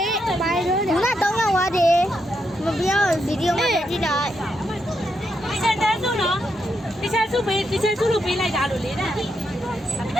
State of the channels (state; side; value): noise; left; hum, 30 dB below the sound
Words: ဘာလို့လဲ ခုန3ရောက်သွားတယ်မပြောဗီဒီယိုမှာကြည့်လိုက် 你现在做呢？你现在做没？你现在做了没来家了嘞？